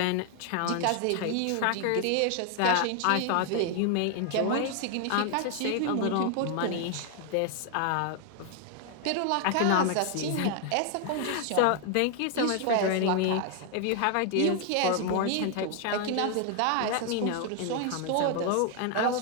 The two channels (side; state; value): both; different; correlation 0.00